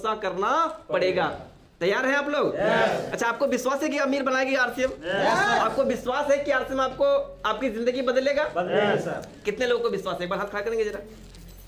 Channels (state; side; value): identical; both; correlation 1.00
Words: करना पड़ेगा। तैयार हैं आप लोग? अच्छा, आपको विश्वास है कि अमीर बनाएगी आरसीएम? आपको विश्वास है कि आरसीएम आपको आपकी जिंदगी बदलेगा? कितने लोगों को विश्वास है? एक बार हाथ खड़ा करेंगे जरा।